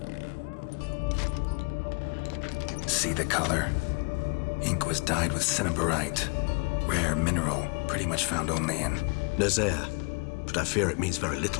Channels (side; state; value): right; quieter; 34.4 dB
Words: See the color? Ink was dyed with cinnabarite. Rare mineral, pretty much found only in Nazaire. But I fear it means very